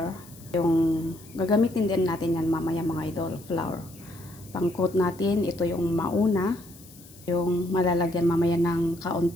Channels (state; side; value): noise; left; hiss, 23 dB below the sound